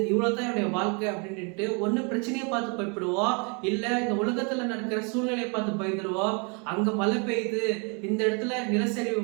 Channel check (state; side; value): quieter; left; 34.6 dB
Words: இவ்வளவுதான் என்னுடைய வாழ்க்கை அப்படின்ட்டு ஒண்ணு பிரச்சனையை பார்த்து பயப்படுவோம், இல்ல இந்த உலகத்துல நடக்கிற சூழ்நிலையை பார்த்து பயந்துருவோம். அங்க மழை பெய்யுது, இந்த இடத்துல நிலச்சரிவு